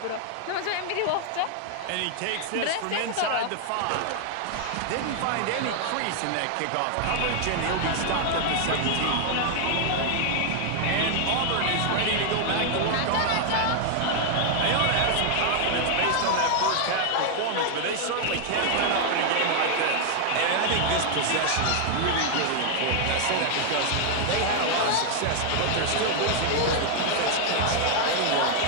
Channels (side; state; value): both; different; correlation 0.00